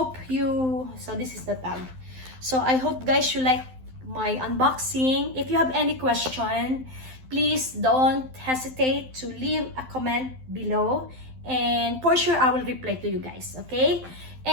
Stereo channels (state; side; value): late; left; 12 ms